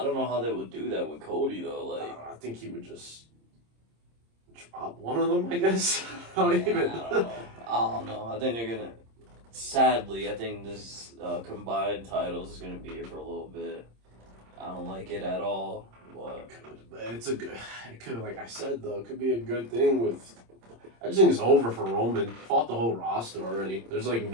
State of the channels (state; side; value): late; left; 26 ms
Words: don't know how they would do that with Cody, though. Like, I think he would just drop one of them, I guess. I don't know. I think they're going to... Sadly, I think this combined titles is going to be here for a little bit. I don't like it at all. But it could, like I said, though, it could be a good thing with... I just think it's over for Roman. Fought the whole roster already. There's, like,